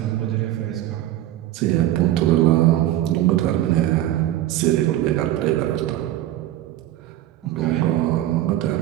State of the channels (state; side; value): quieter; left; 13.9 dB